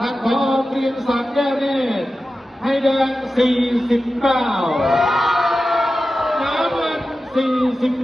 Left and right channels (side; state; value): both; normal; correlation 0.93